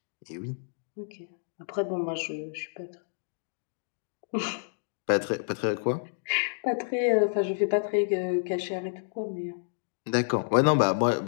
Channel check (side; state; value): right; silent; digital silence